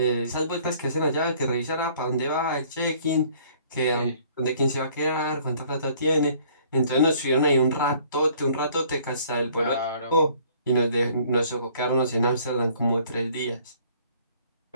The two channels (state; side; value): inverted; both; correlation -0.58